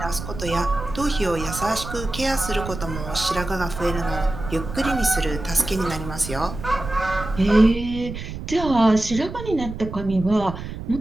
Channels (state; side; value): noise; right; rumble, 9 dB below the sound